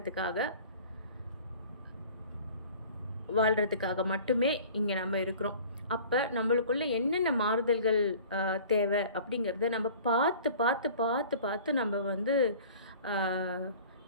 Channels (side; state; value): both; inverted; correlation -0.45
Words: வாழ்கிறதுக்காக மட்டுமே இங்கே நம்ம இருக்கிறோம். அப்போ நம்மளுக்குள்ள என்னென்ன மாறுதல்கள் தேவை அப்படிங்கிறத நம்ம பார்த்து பார்த்து பார்த்து பார்த்து நம்ம வந்து